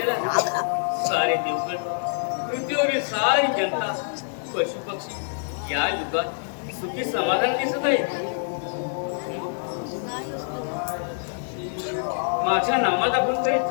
सारे देवगण, पृथ्वीवरील सारी जनता, पशु पक्षी या युगात सुखी समाधान दिसत आहे. माझ्या नामात आपण काही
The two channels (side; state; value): right; silent; digital silence